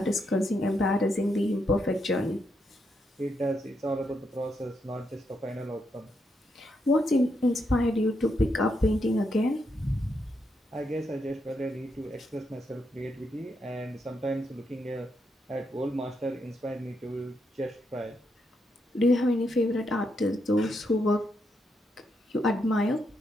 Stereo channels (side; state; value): both; normal; correlation 0.80